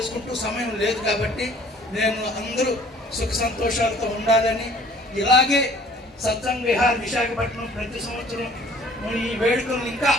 సమయం లేదు కాబట్టి నేను అందరూ సుఖ సంతోషాలతో ఉండాలని, ఇలాగే సత్సంగ్ విహార్ విశాఖపట్నం ప్రతి సంవత్సరం ఈ వేడుకలను ఇంకా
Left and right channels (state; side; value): normal; both; correlation 0.54